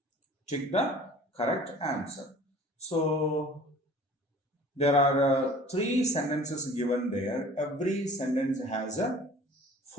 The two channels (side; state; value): both; normal; correlation 0.46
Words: Tick the correct answer. So there are three sentences given there. Every sentence has